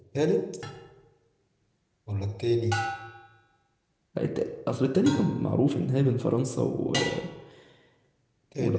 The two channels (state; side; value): identical; both; correlation 1.00